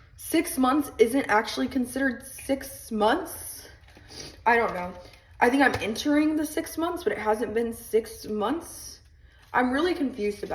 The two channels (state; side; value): identical; both; correlation 1.00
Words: 6 months isn't actually considered 6 months. I don't know. I think I'm entering the 6 months, but it hasn't been 6 months. I'm really confused